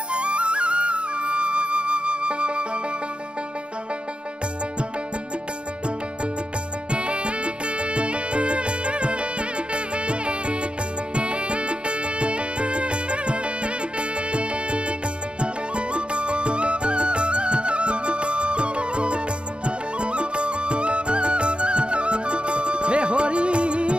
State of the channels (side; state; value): left; late; 0.055 ms